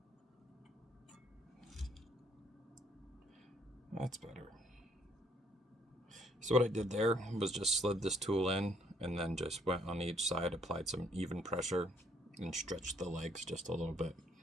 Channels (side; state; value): both; normal; correlation 0.66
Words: That's better. So what I did there was just slid this tool in and then just went on each side, applied some even pressure, and stretched the legs just a little bit.